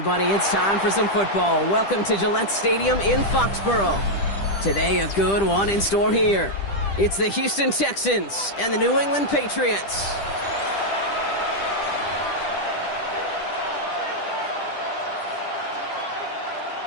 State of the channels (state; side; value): late; right; 10 ms